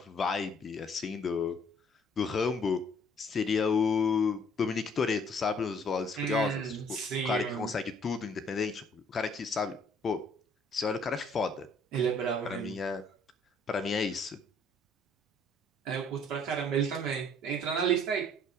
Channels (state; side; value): normal; both; correlation 0.60